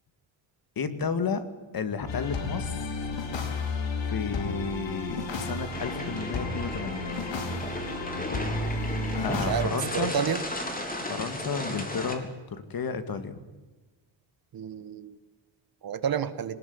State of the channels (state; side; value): normal; both; correlation 0.10